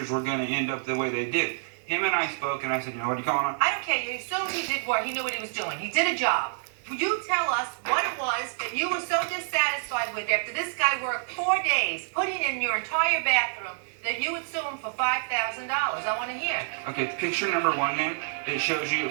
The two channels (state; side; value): silent; left; digital silence